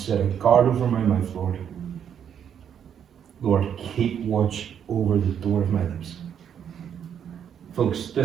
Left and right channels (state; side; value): quieter; left; 8.6 dB